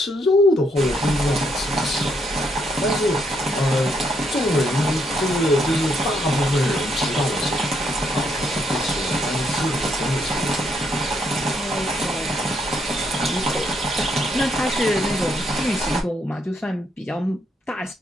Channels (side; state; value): both; normal; correlation 0.74